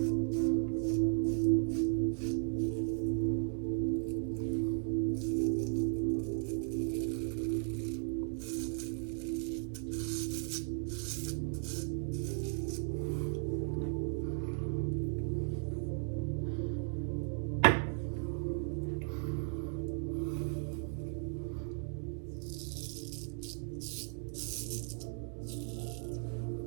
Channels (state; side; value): silent; left; 54 dB below the other